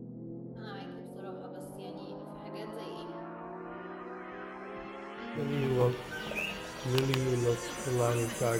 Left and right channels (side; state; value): both; identical; correlation 1.00